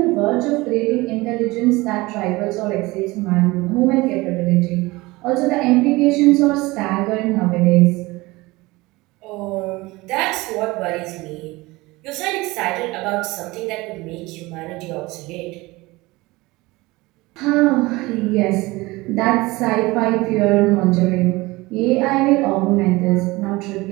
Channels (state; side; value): quieter; left; 21.5 dB